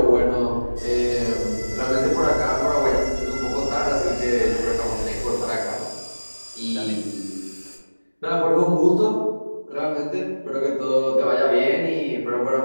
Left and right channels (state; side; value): inverted; both; correlation -1.00